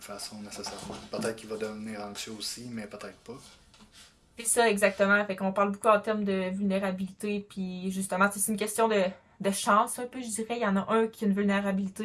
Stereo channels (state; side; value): identical; both; correlation 1.00